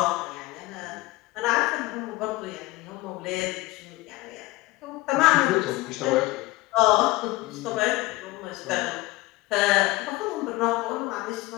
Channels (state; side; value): quieter; right; 20.4 dB